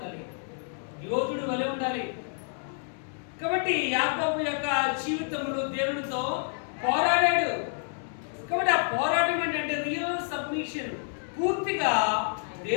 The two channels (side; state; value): right; silent; 57 dB below the other